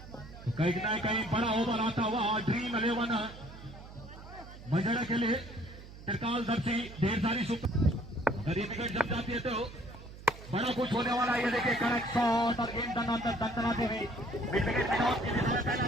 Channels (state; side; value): noise; right; hum, 16 dB below the sound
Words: तो कहीं ना कहीं बड़ा ओवर आता हुआ ड्रीम 11 मजड़ा के लिए त्रिकाल दर्शी ढेर सारी अगर ये विकेट जम जाती है तो बड़ा कुछ होने वाला है। ये देखिए करेक्ट शॉट और गेंद दंदनाते हुए मिड विकेट में आउट की दिशा में पहला